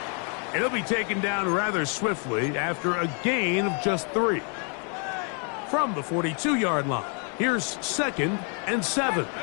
And he'll be taken down rather swiftly after a gain of just 3. From the 42-yard line, here's 2nd and 7.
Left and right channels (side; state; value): right; quieter; 39.6 dB